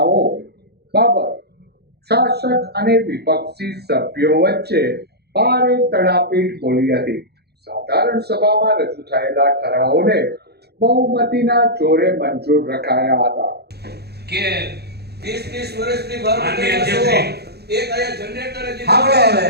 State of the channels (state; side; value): late; left; 0.47 ms